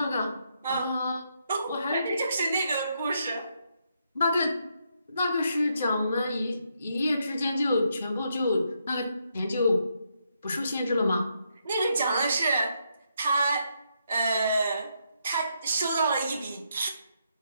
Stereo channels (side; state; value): both; inverted; correlation -0.78